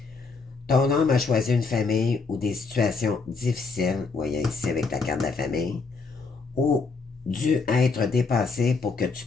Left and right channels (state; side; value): quieter; right; 4.4 dB